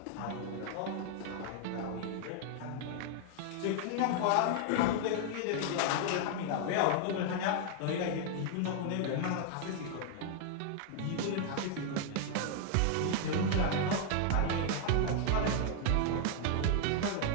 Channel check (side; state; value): both; different; correlation 0.00